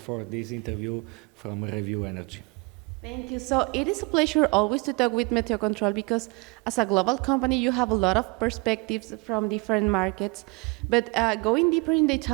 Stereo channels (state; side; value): quieter; left; 28.6 dB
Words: this interview from Review Energy. Thank you. So it is a pleasure always to talk with meteocontrol because as a global company, you have a lot of perspectives from different markets. But going deeper in the